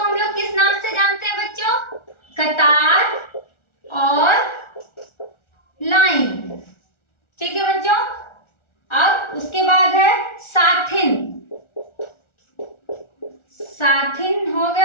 लोग किस नाम से जानते हैं बच्चों? कतार और लाइन, ठीक है बच्चों। अब उसके बाद है साथिन। साथिन हो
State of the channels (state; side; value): late; right; 1.4 ms